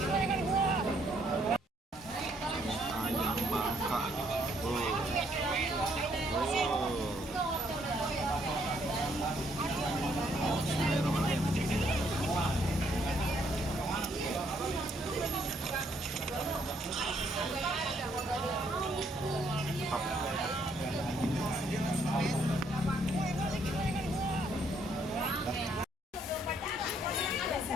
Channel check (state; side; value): normal; both; correlation 0.69